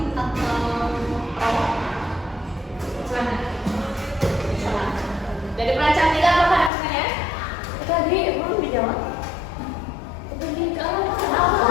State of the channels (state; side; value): drops out; right; at 6.7 s